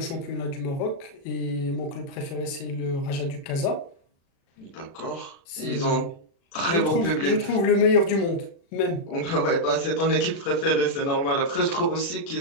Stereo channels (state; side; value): late; right; 36 ms